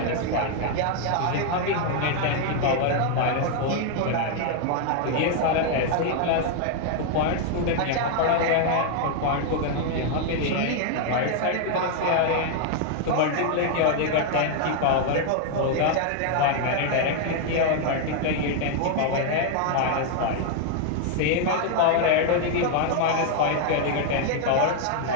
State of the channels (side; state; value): both; different; correlation 0.00